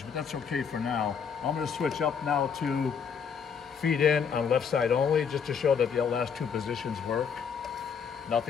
but that's okay for now. I'm gonna switch up now to feed in on left side only, just to show that the last 2 positions work.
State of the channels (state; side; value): quieter; right; 6.7 dB